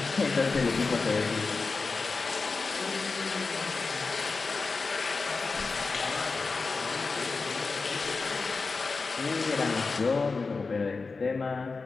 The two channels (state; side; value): quieter; right; 4.2 dB